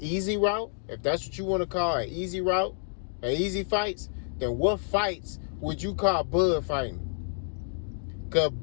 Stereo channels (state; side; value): silent; right; digital silence